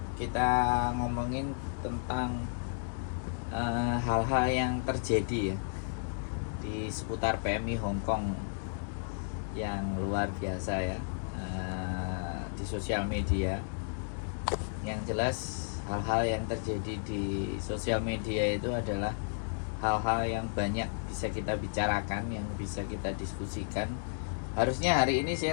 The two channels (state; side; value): silent; right; digital silence